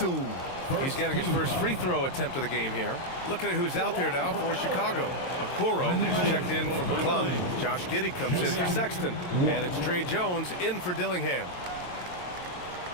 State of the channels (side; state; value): right; late; 22 ms